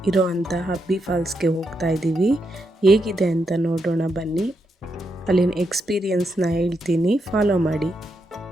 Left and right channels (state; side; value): normal; both; correlation 0.82